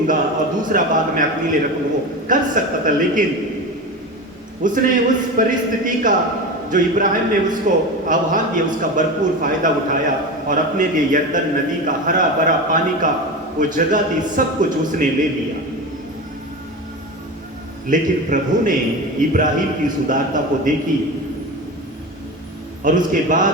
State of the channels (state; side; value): normal; both; correlation 0.26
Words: और दूसरा भाग मैं अपने लिए रखूंगा। वो कर सकता था, लेकिन उसने उस परिस्थिति का जो इब्राहिम ने उसको आह्वान दिया उसका भरपूर फायदा उठाया और अपने लिए यर्दन नदी का हरा भरा पानी का वो जगह थी, सब कुछ उसने ले लिया। लेकिन प्रभु ने इब्राहिम की सुदारता को देखी, और उसके बाद